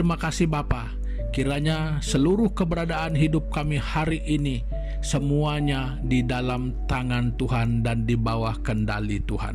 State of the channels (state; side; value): identical; both; correlation 1.00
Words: kasih Bapa. Kiranya seluruh keberadaan hidup kami hari ini semuanya di dalam tangan Tuhan dan di bawah kendali